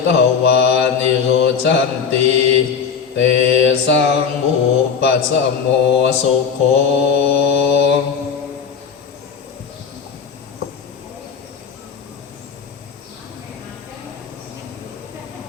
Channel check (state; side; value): quieter; right; 6.5 dB